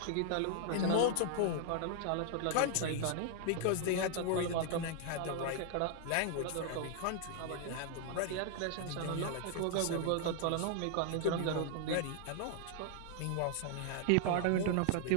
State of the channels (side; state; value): both; different; correlation 0.00